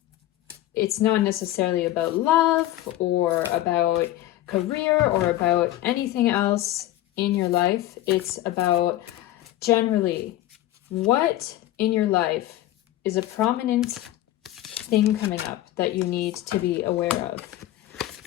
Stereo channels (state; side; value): quieter; right; 14.7 dB